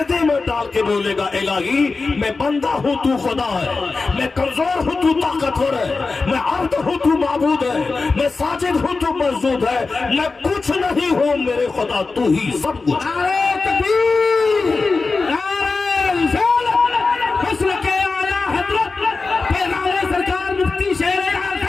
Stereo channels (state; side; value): quieter; right; 4.0 dB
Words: میں ڈال کے بولے گا الہی میں بندہ ہوں تو خدا ہے, میں کمزور ہوں تو طاقتور ہے, میں عبد ہوں تو معبود ہے, میں ساجد ہوں تو مسجود ہے, میں کچھ نہیں ہوں میرے خدا تو ہی سب کچھ. نعرہ تکبیر, نعرہ رسالت, مسلک اعلیٰ حضرت پیغمبر سرکار مفتی شیر